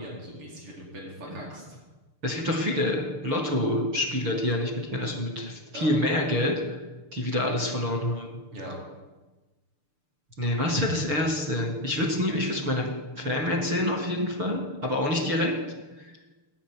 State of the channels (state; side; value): late; left; 6.7 ms